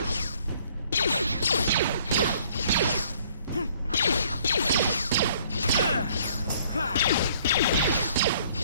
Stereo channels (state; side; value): inverted; both; correlation -0.60